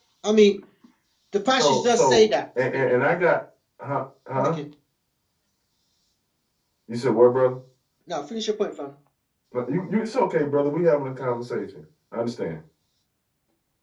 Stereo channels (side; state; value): both; identical; correlation 1.00